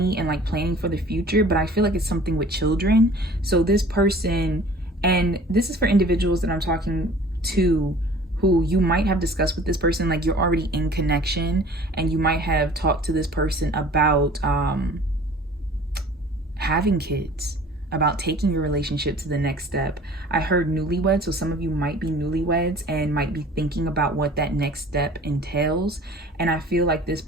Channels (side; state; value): both; normal; correlation 0.47